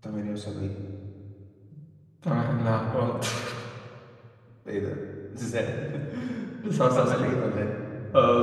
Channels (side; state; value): both; identical; correlation 1.00